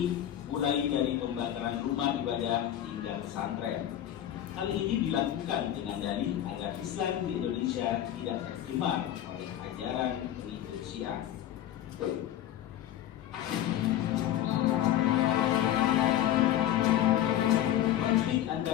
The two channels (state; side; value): quieter; right; 11.9 dB